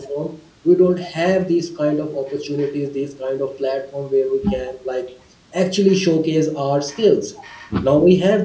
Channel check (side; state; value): both; identical; correlation 1.00